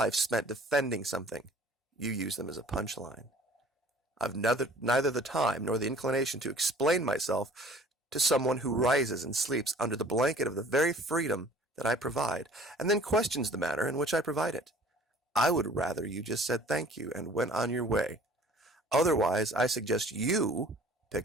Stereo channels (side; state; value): both; normal; correlation 0.50